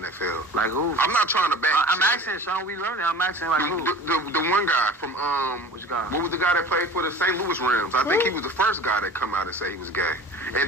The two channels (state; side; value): normal; both; correlation 0.40